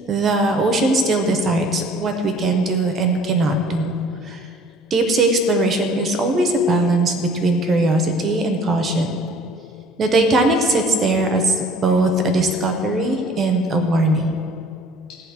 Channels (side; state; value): both; normal; correlation 0.52